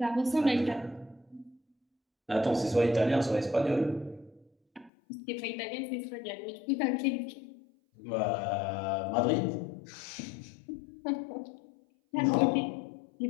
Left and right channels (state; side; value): drops out; right; at 4.9 s